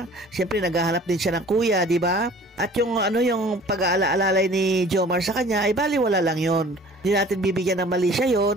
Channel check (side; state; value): both; normal; correlation 0.48